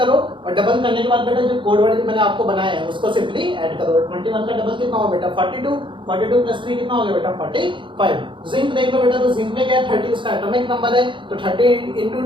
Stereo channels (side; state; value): left; late; 0.24 ms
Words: और डबल करने के बाद बेटा जो कोड वर्ड मैंने आपको बनाया है उसको सिंपली ऐड करो। 21 का डबल कितना होगा बेटा 42, 42 प्लस 3 कितना हो गया बेटा 45। जिंक देख लो बेटा, तो जिंक में क्या है 30 उसका एटॉमिक नंबर है, तो 30 into